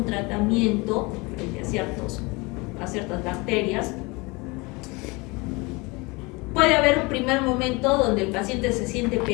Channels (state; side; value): quieter; right; 25.9 dB